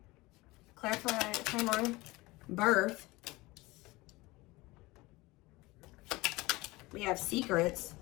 Clarify, come on. Birth. We have secrets.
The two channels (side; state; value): right; quieter; 21.5 dB